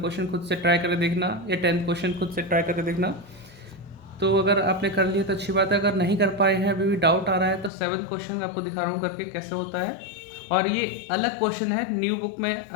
खुद से ट्राई करके देखना या 10th क्वेश्चन खुद से ट्राई करके देखना। तो अगर आपने कर लिया तो अच्छी बात है, अगर नहीं कर पाए हैं, अभी भी डाउट आ रहा है, तो 7th क्वेश्चन मैं आपको दिखा रहा हूँ करके कैसे होता है। और ये अलग क्वेश्चन है, न्यू बुक में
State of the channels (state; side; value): drops out; right; at 7.7 s